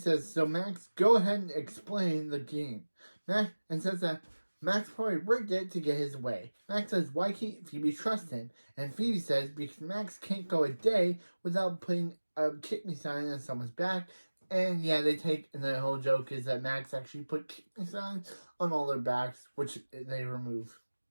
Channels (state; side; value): inverted; both; correlation -1.00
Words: so Max, go ahead and explain the game. Max, and says that Max probably rigged it to get his way. Max says, why can't Phoebe trust him? And Phoebe says, because Max can't go a day without putting a kick me sign on someone's back. And yeah, and the whole joke is that Max actually put kick me signs on all their backs, which they remove.